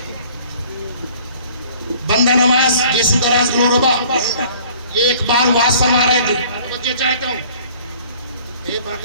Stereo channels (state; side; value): inverted; both; correlation -0.52